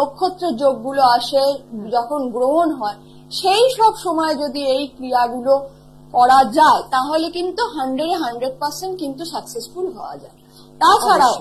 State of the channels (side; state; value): both; identical; correlation 1.00